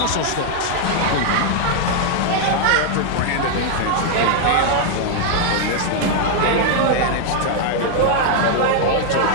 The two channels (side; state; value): both; different; correlation 0.00